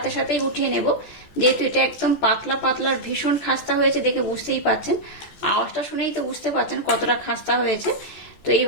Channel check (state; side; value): late; right; 14 ms